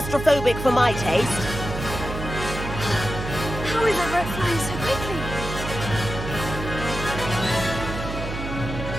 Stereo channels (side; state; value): right; noise; hum, 6 dB below the sound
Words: for my taste. How is Everett flying so quickly?